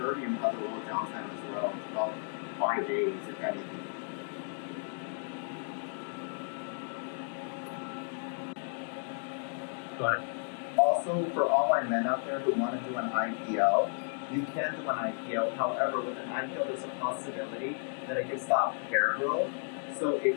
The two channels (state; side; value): silent; right; 56 dB below the other